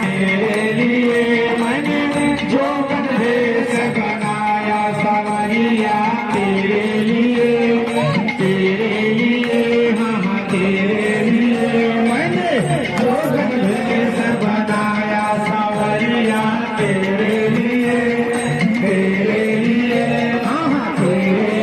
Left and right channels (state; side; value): identical; both; correlation 1.00